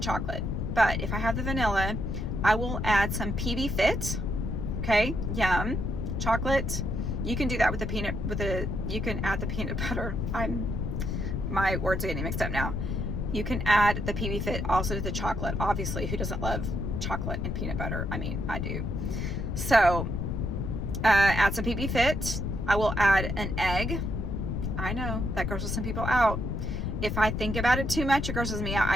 but if I have the vanilla, I will add some PB Fit. Okay, yum. Chocolate. You can do that with you can add the peanut butter. My words are getting mixed up now. You can add the PB Fit also to the chocolate. Obviously, who doesn't love chocolate and peanut butter? I mean, I do. So add some PB Fit. I will add an egg. I know that grosses some people out. If I think about it too much, it grosses me out.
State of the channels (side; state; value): left; noise; rumble, 2 dB below the sound